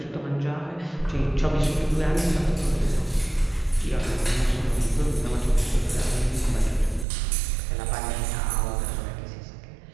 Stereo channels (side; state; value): left; drops out; at 7.1 s